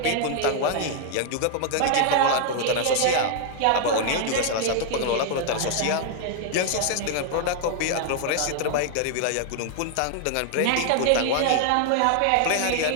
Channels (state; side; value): different; both; correlation 0.00